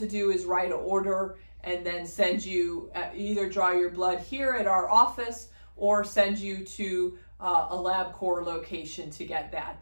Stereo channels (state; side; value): inverted; both; correlation -1.00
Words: do is write an order and then send you, either draw your blood here at our office or send you to a LabCorp location to get that